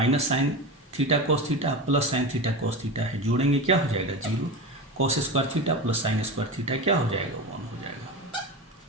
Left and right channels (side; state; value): both; normal; correlation 0.24